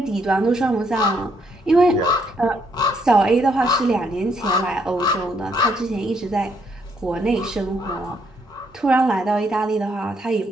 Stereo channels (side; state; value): both; normal; correlation 0.72